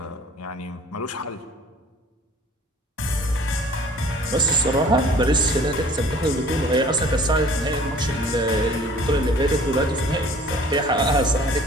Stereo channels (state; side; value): normal; both; correlation 0.50